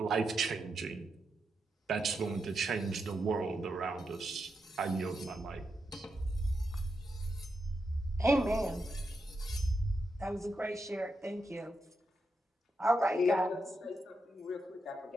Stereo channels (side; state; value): both; normal; correlation 0.85